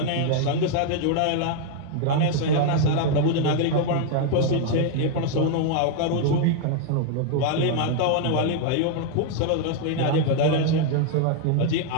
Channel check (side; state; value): both; different; correlation 0.00